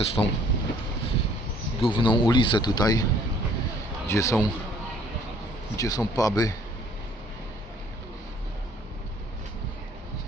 tą główną ulicę tutaj, gdzie są puby.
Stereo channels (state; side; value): normal; both; correlation 0.58